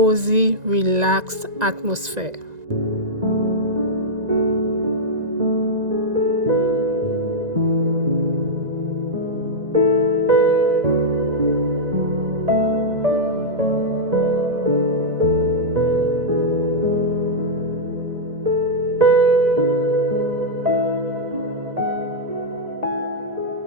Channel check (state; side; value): late; left; 1.9 ms